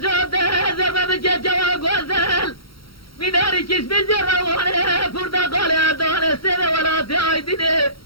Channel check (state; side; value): late; right; 0.74 ms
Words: زرمه بجه جوا گوزل میناری کش بجره وانه پرتقال دانه سنه ولاتی آیدینه